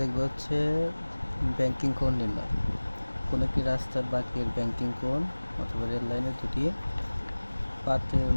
হচ্ছে ব্যাংকিং কোণ নির্ণয়। কোনো একটি রাস্তার বাঁকের ব্যাংকিং কোণ অথবা রেল লাইনের দুটি পাতের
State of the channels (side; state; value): both; inverted; correlation -1.00